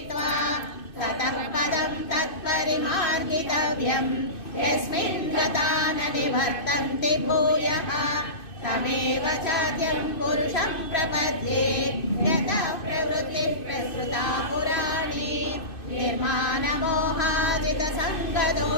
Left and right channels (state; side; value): late; right; 2.6 ms